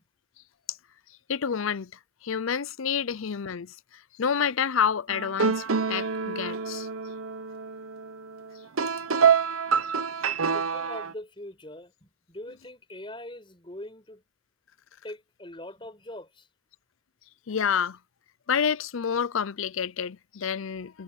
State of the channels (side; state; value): both; normal; correlation -0.15